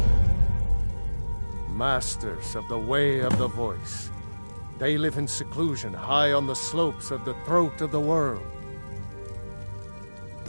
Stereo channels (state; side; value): inverted; both; correlation -1.00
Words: Masters of the Way of the Voice. They live in seclusion high on the slopes of the throat of the world.